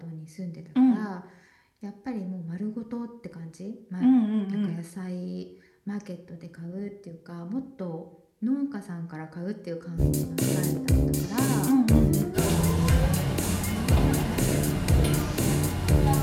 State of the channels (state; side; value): identical; both; correlation 1.00